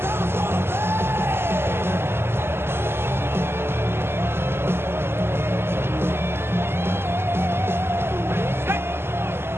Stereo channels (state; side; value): late; left; 0.12 ms